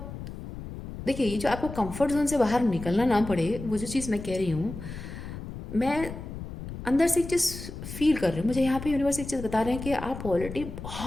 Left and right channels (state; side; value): noise; left; rumble, 10 dB below the sound